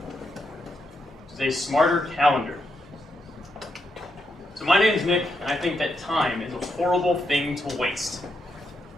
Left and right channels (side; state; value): both; normal; correlation 0.81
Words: which is a smarter calendar. So my name's Nick, and I think that time is a horrible thing to waste.